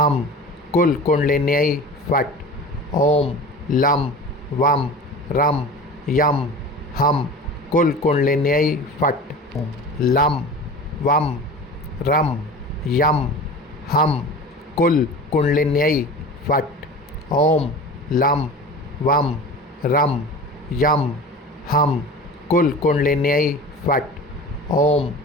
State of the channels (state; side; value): normal; both; correlation 0.36